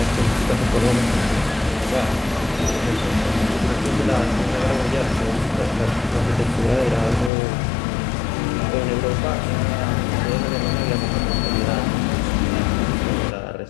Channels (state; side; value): drops out; right; at 7.3 s